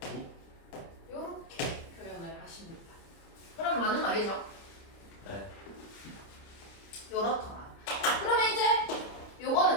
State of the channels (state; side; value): late; right; 30 ms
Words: 오? 요렇게 표현을 하십니다. 그럼 맞는 말이죠? 네 요렇더라. 그러면 이제 요거는